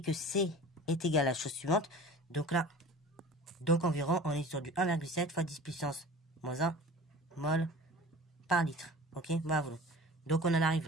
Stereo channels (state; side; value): normal; both; correlation 0.40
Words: que C est égal à la chose suivante. Donc là, donc environ, on est sur du 1,7 fois 10 puissance moins 1 mol par litre. Ok, voilà. Donc, on en arrive